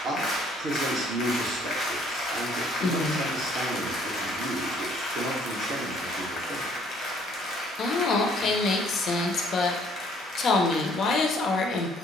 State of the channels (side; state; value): both; normal; correlation 0.61